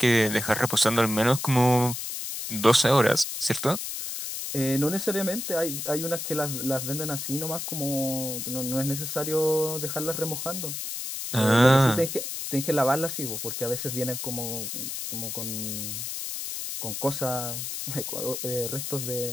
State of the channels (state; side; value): noise; left; hiss, 5 dB below the sound